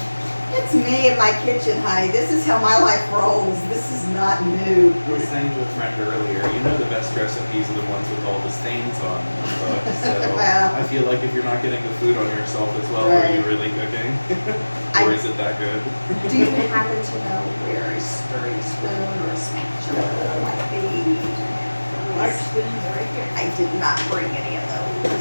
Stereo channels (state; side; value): inverted; both; correlation -1.00